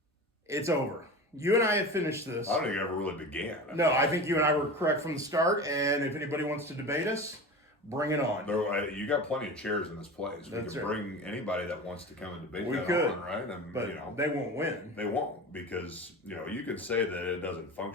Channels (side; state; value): both; normal; correlation 0.31